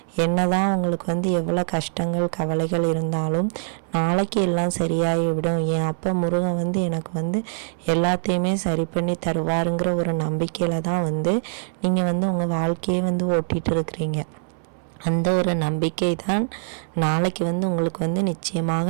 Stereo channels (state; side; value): silent; left; 63 dB below the other